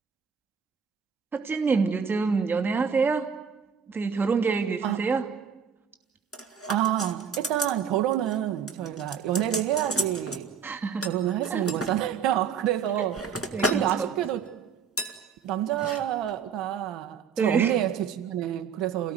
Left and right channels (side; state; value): left; quieter; 6.9 dB